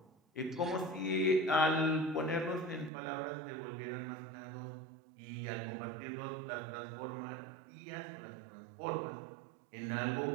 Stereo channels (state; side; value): drops out; left; at 2.9 s